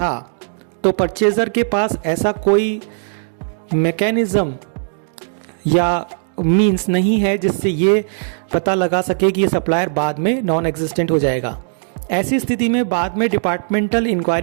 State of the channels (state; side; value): silent; left; digital silence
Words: तो परचेजर के पास ऐसा कोई मैकेनिज्म या मींस नहीं है जिससे ये पता लगा सके कि ये सप्लायर बाद में नॉन एग्जिस्टेंट हो जाएगा। ऐसी स्थिति में बाद में डिपार्टमेंटल